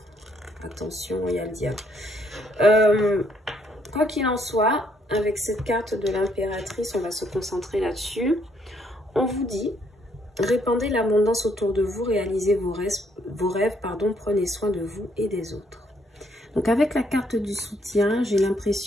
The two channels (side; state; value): both; normal; correlation 0.70